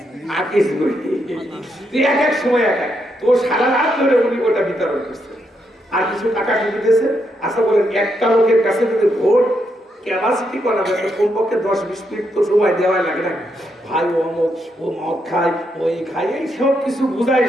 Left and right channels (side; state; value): both; normal; correlation 0.80